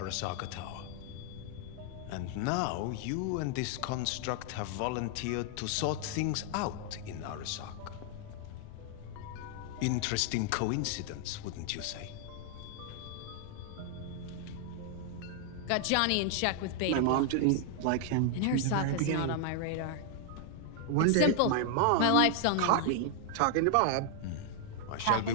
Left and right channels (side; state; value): both; different; correlation 0.00